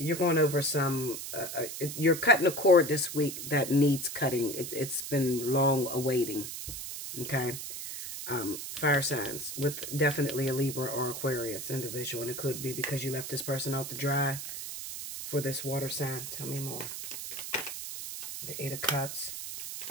going over some, you're cutting a cord this week that needs cutting. It's been long awaiting. Okay. Fire signs with definitely a Libra or Aquarius individual. And it could be because you left this person out to dry for this water sign. Tell me more. The Eight of Cups.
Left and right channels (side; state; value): right; noise; hiss, 7 dB below the sound